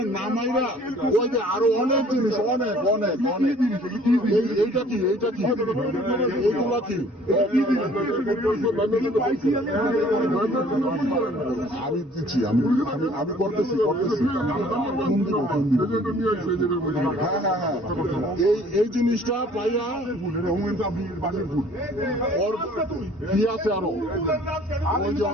নামাইরা ওই যে আরো অনেক জিনিস, অনেক অনেক অনেক। এইটা কি এইগুলা কি? আমি দিচ্ছি, আমি করতেছি। এই জিনিসটা পাইয়া ওর কি আছে আরো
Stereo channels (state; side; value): normal; both; correlation 0.54